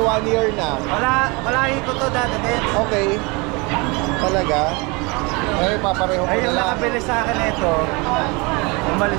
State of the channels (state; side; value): quieter; left; 27.5 dB